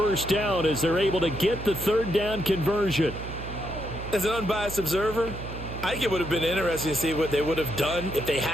down as they're able to get the 3rd down conversion. As an unbiased observer, I think it would have been interesting to see what they would have done if they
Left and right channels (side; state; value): right; noise; hum, 10 dB below the sound